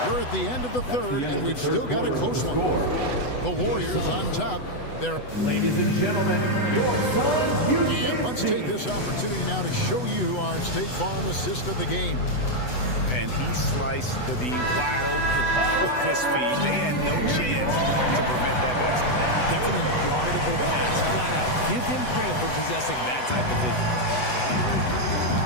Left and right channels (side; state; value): right; late; 8.0 ms